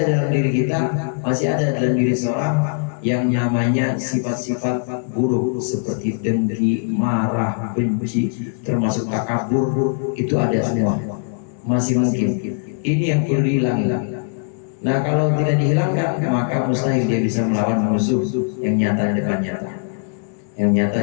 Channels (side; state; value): right; silent; digital silence